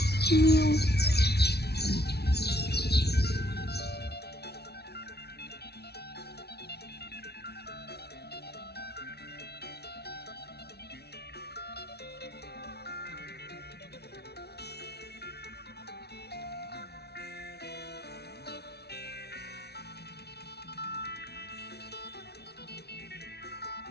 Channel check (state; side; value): late; right; 0.48 ms